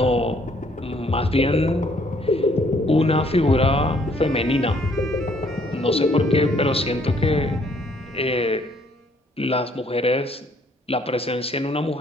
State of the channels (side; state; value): both; normal; correlation 0.64